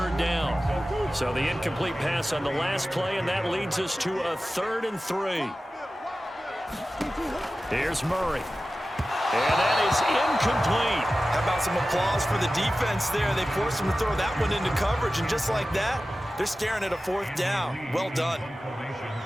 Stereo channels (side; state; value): both; normal; correlation 0.95